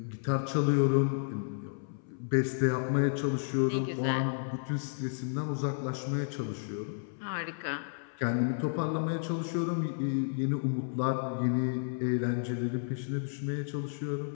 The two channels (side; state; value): right; silent; 56 dB below the other